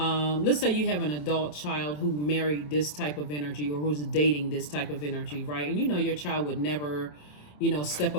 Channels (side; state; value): right; late; 27 ms